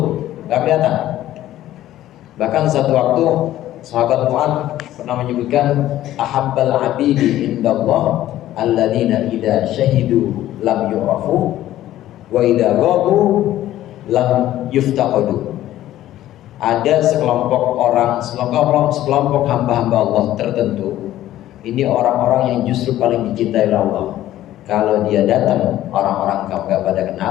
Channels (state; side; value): quieter; right; 13.7 dB